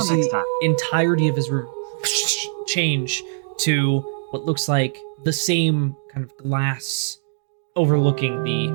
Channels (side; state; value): left; silent; digital silence